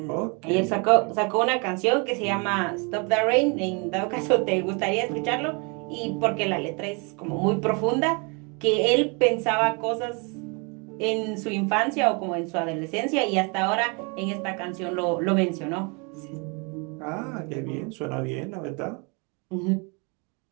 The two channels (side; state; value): left; quieter; 32.4 dB